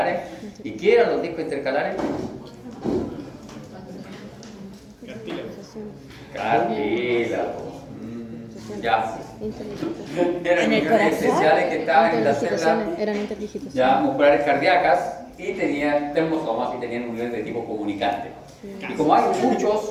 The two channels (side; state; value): both; identical; correlation 1.00